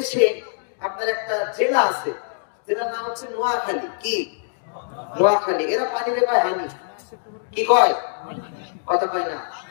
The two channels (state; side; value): silent; right; digital silence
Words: আপনার একটা জেলা আছে, যেটার নাম হচ্ছে নোয়াখালী। কি? নোয়াখালী। এরা পানিরে কয় হানি। কি কয়? কথা কয় না,